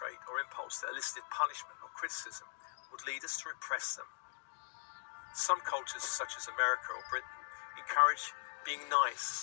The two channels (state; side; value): silent; right; digital silence